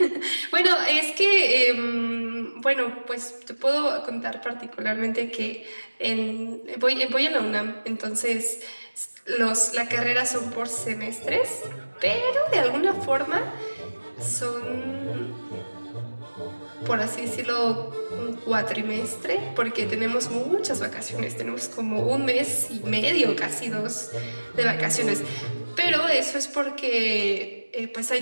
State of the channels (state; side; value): inverted; both; correlation -1.00